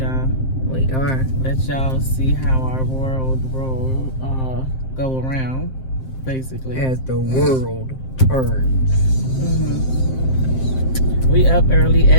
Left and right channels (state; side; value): late; right; 7.6 ms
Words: We are. Let y'all see how our world go around, basically. As the world turns. Mm-hmm. We up early